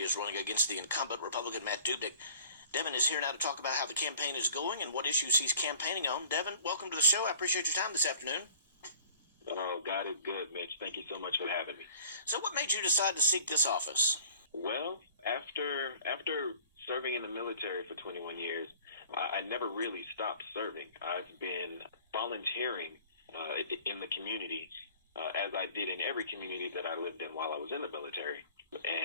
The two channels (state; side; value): inverted; both; correlation -0.50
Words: is running against the incumbent Republican Matt Dubnik. Devin is here now to talk about how the campaign is going and what issues he's campaigning on. Devin, welcome to the show. I appreciate your time this afternoon. Oh, God is good, Mitch. Thank you so much for having me. So what made you decide to seek this office? Well, after serving in the military for 21 years, I never really stopped serving. I've been volunteering in the community, as I did in every community that I lived in while I was in the military.